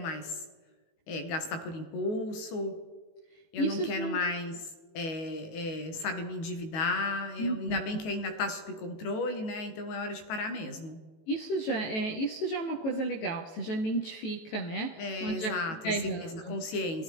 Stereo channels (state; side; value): late; right; 18 ms